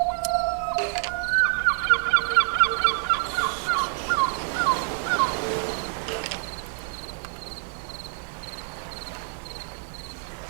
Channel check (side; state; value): left; silent; 58 dB below the other